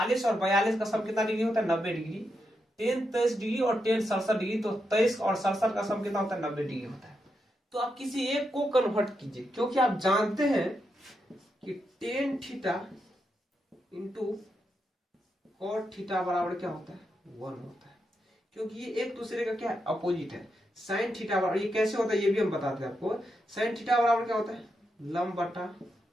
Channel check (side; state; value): both; normal; correlation 0.84